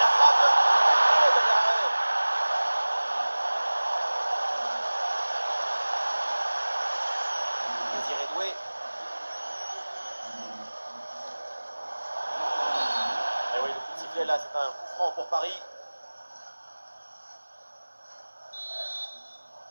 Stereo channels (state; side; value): inverted; both; correlation -1.00